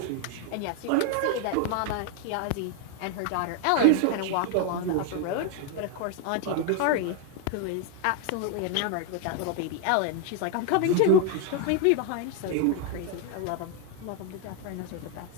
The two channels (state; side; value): different; both; correlation 0.00